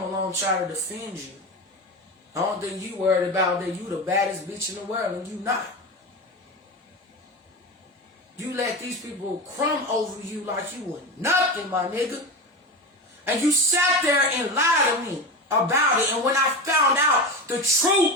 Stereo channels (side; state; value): both; normal; correlation 0.23